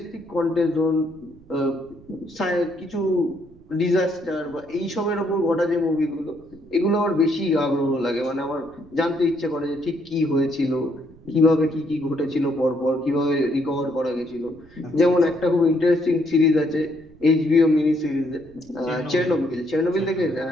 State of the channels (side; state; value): right; noise; rumble, 25 dB below the sound